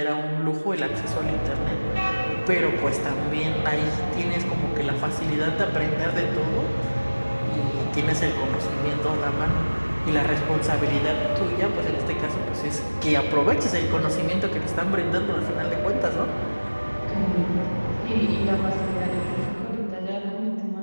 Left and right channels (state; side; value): inverted; both; correlation -1.00